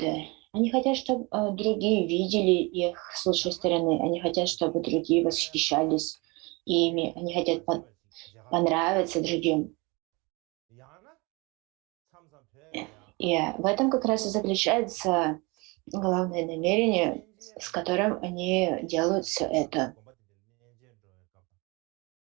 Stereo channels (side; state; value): left; quieter; 26.7 dB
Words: Они хотят, чтобы другие видели их с лучшей стороны. Они хотят, чтобы другие восхищались ими. Они хотят понравиться другим. И в этом как раз и заключается главное намерение, с которым они делают все это.